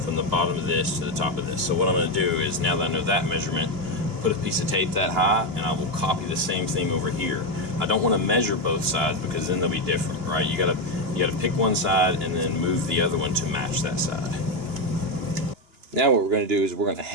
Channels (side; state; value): left; late; 2.9 ms